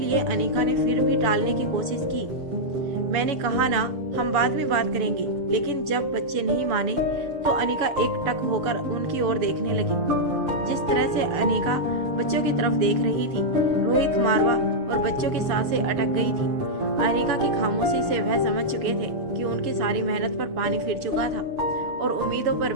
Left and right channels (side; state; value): left; late; 6.8 ms